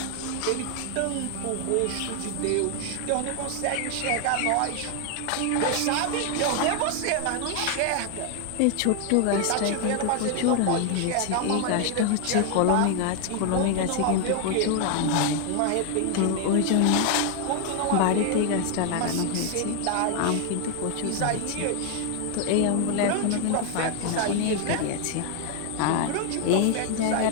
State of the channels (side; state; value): both; different; correlation 0.00